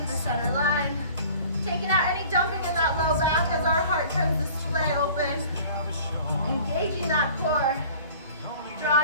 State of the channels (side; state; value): both; inverted; correlation -0.47